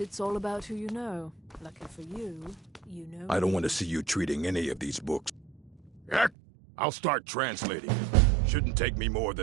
all about who you know. Lucky for you, you know... I don't want to see you treating any of these books. Heck, I'll start translating it. Shouldn't take me more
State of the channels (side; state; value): left; drops out; at 6.3 s